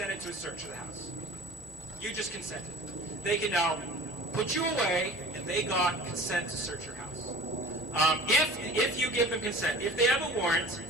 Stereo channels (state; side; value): normal; both; correlation 0.41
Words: to a search of the house. You just consented. They can now put you away, and they got consent to search your house. If you give them consent, if they have a warrant,